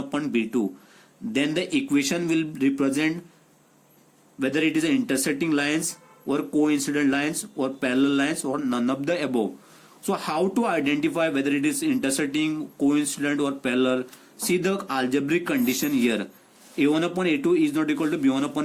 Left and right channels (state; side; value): identical; both; correlation 1.00